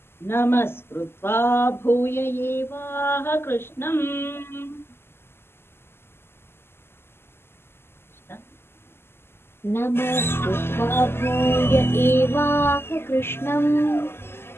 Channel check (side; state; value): right; late; 0.12 ms